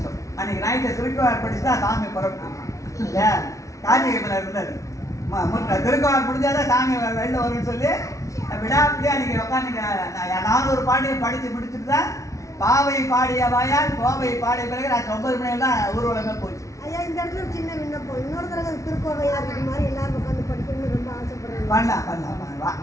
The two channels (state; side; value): late; right; 0.15 ms